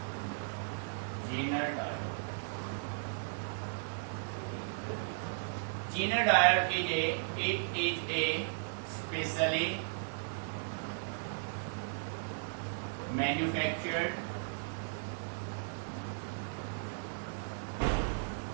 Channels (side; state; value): left; silent; digital silence